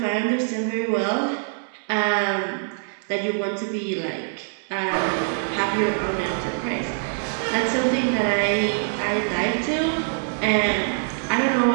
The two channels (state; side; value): silent; left; digital silence